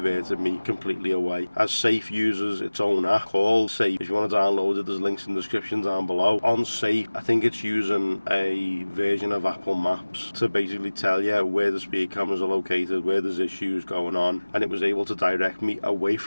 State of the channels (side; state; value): both; inverted; correlation -1.00